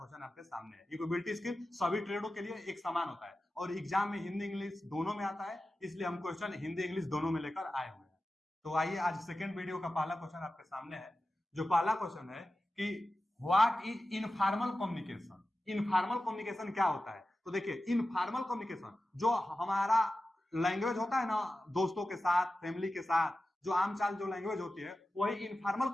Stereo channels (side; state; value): both; normal; correlation 0.94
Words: आपके सामने है। इंफॉर्मेबिलिटी स्किल सभी ट्रेडों के लिए एक समान होता है और एग्जाम में हिंदी इंग्लिश दोनों में आता है, इसलिए हम क्वेश्चन हिंदी इंग्लिश दोनों में लेकर आए हुए हैं। तो आइए आज सेकंड वीडियो का पहला क्वेश्चन आपके सामने है। जो पहला क्वेश्चन है कि what is informal communication. Informal communication क्या होता है? तो देखिए, इनफॉर्मल कम्युनिकेशन जो हमारा लैंग्वेज होता है ना, दोस्तों के साथ, फैमिली के साथ, जो आम चाल जो लैंग्वेज होती है, वही इनफॉर्मल